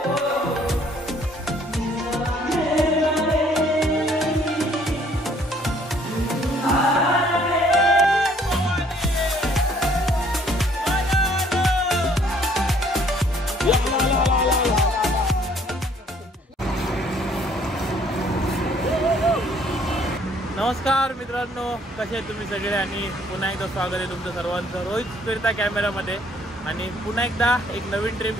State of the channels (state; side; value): normal; both; correlation 0.61